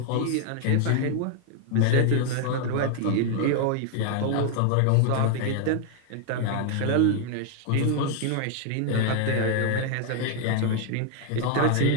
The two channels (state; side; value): different; both; correlation 0.00